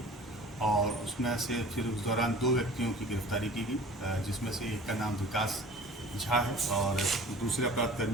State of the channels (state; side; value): normal; both; correlation 0.44